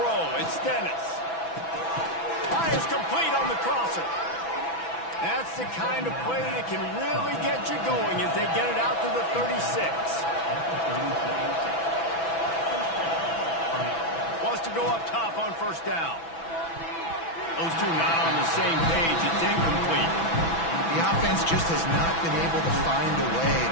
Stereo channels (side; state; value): right; late; 6.0 ms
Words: it's Dennis. Fires complete on the crosser. That's the kind of play that can really get you going as they get it out to the 36. Wants to go up top on first down. Those two not on the same page. It's incomplete. The offense just has not been able to find a way